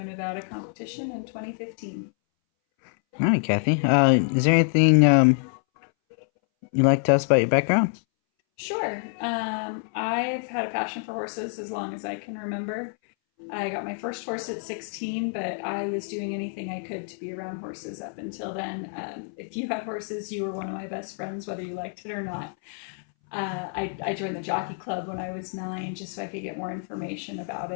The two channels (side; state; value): right; silent; 60 dB below the other